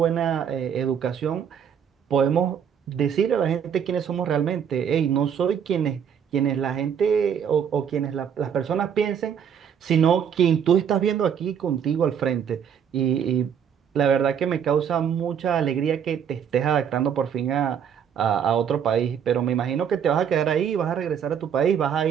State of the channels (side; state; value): left; quieter; 8.0 dB